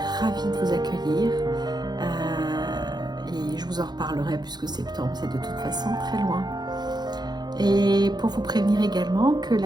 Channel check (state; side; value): late; left; 0.20 ms